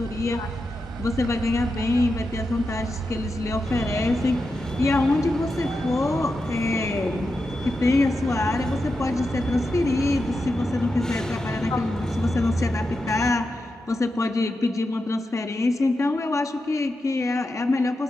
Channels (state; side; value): normal; both; correlation 0.88